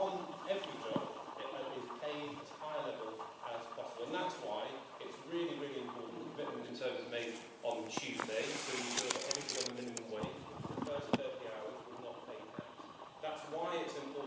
every job is paid as high a level as possible. And that's why it's really, really important. The commitment in terms of made on Tuesday to ensure that everything on the minimum wage for the first 30 hours will not pay tax. That's why it's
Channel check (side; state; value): both; identical; correlation 1.00